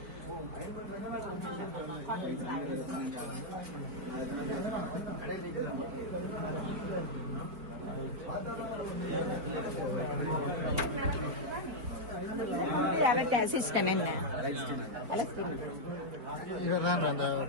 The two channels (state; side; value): late; left; 4.5 ms